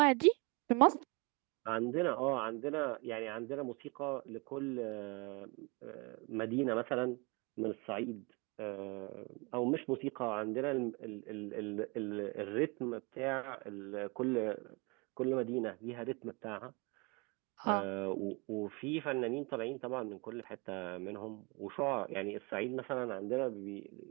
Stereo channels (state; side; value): quieter; left; 29.1 dB